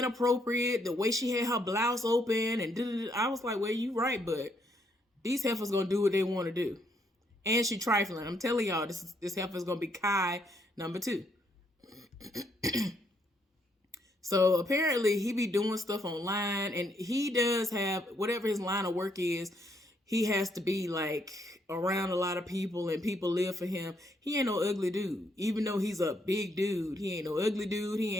the way she had her blouse open, and I was like, well, you right, but these heifers gonna do what they want to do. And she trifling. I'm telling y'all, this heifer's gonna be Kai number 2. So apparently he be doing stuff online, and he does have, whatever his line of work is, he has to be like around a lot of people, and people live for him. He ain't no ugly dude. Even though he's a big dude, he ain't no ugly dude. He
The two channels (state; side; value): normal; both; correlation 0.73